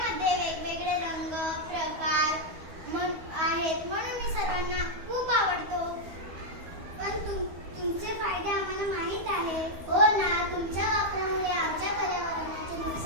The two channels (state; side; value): late; left; 13 ms